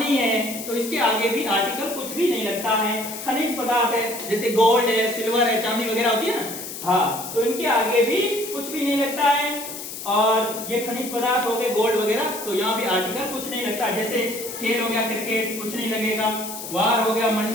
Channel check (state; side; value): noise; left; hiss, 9 dB below the sound